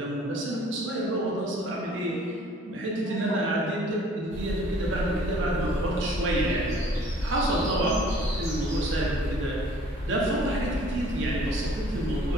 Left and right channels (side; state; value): both; normal; correlation 0.54